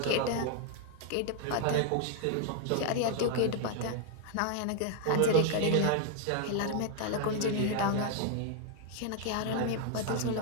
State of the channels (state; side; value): different; both; correlation 0.00